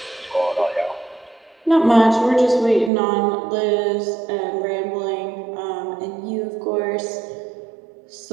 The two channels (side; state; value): left; drops out; at 2.9 s